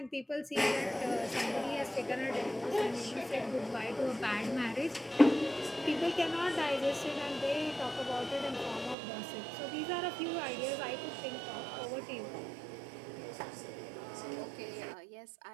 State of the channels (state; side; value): drops out; left; at 9.0 s